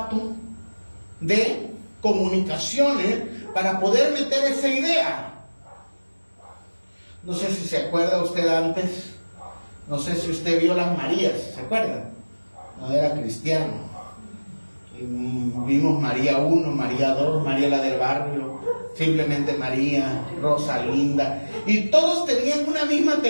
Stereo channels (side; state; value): both; inverted; correlation -1.00